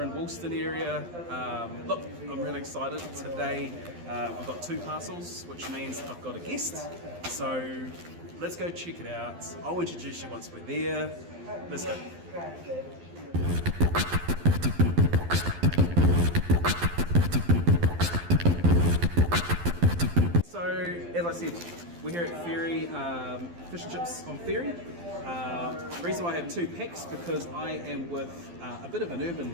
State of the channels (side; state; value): left; late; 12 ms